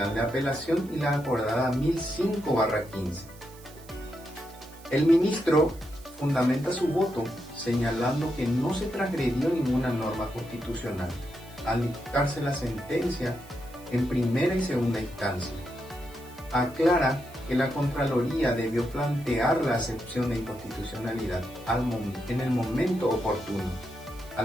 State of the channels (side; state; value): right; noise; hiss, 22 dB below the sound